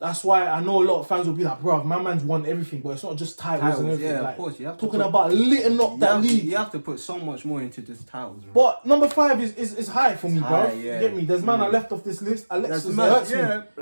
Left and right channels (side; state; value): both; inverted; correlation -1.00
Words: why I know a lot of fans will be like, bro, my man's won everything, but it's not just titles and everything. Yeah, like, of course. You have to talking about lighting up that league. You have to put so much more into this titles, bro. But number 5 is high for me, bro. You get me? There's man I left off this list. Alexis hurts me.